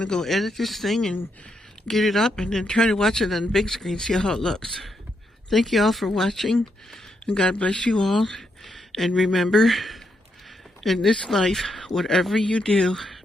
to go edit this thing and get it up and then try to watch it on the big screen, see how it looks. Thank you all for watching, and God bless you all. And remember, in this life, whatever you do,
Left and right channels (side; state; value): both; normal; correlation 0.80